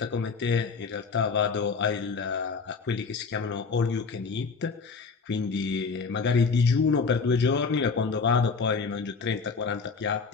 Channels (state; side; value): quieter; right; 4.9 dB